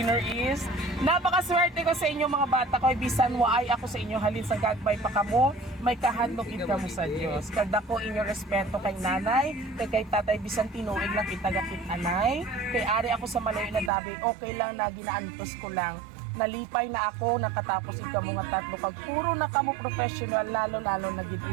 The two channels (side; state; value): left; drops out; at 13.9 s